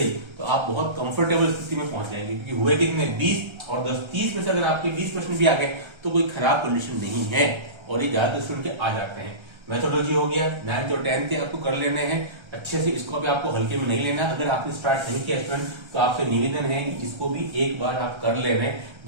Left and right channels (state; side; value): late; left; 1.3 ms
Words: तो आप बहुत कंफर्टेबल स्थिति में पहुंच जाएंगे। क्योंकि हुए कितने 20 और 10, 30 में से अगर आपके 20 प्रश्न भी आ गए तो कोई खराब कंडीशन नहीं है, और ये ज्यादातर स्टूडेंट के आ जाते हैं। मेथोडोलॉजी हो गया, 9th और 10th के आपको कर लेने हैं अच्छे से, इसको भी आपको हल्के में नहीं लेना। अगर आपने स्टार्ट नहीं किया स्टूडेंट तो आपसे निवेदन है कि इसको भी एक बार आप कर लेना